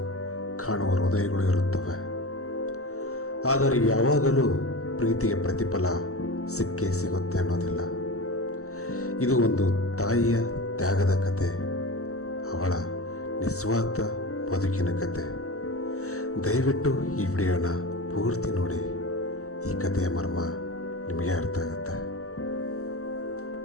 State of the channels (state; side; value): late; right; 0.64 ms